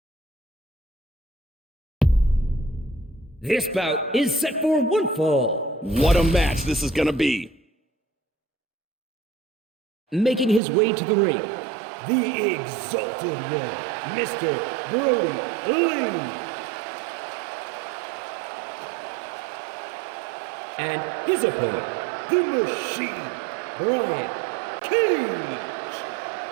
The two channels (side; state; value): left; drops out; at 10.6 s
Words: This bout is set for one fall. What a match this is going to be. Making his way to the ring, the Exalted One, Mr. Brodie Lee. And his opponent, the Machine, Brian Cage.